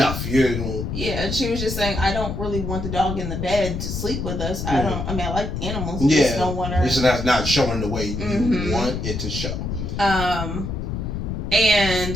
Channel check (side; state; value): left; noise; rumble, 4 dB below the sound